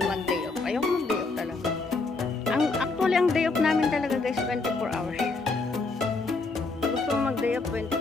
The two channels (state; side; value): quieter; right; 3.8 dB